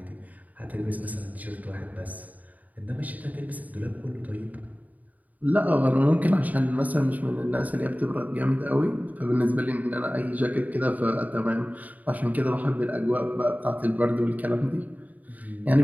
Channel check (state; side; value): late; left; 0.076 ms